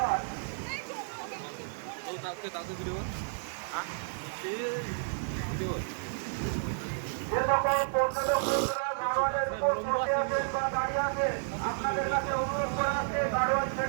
যে সকল পর্যটক বন্ধুরা গাড়োয়ালের উপর বসে আছেন বা দাঁড়িয়ে আছেন, আপনাদের কাছে অনুরোধ করা আছে গাড়োয়াল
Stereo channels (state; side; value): silent; left; digital silence